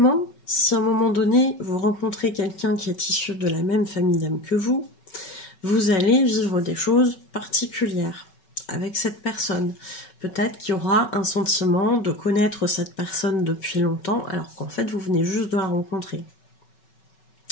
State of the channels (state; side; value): late; right; 5.3 ms